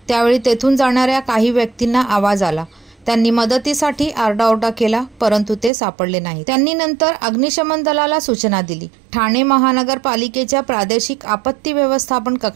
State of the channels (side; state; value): left; drops out; at 5.7 s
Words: त्यावेळी तेथून जाणाऱ्या काही व्यक्तींना आवाज आला। त्यांनी मदतीसाठी आरडाओरडा केला, परंतु ते सापडले नाही। त्यांनी नंतर अग्निशमन दलाला सूचना दिली। ठाणे महानगरपालिकेच्या प्रादेशिक आपत्ती व्यवस्थापन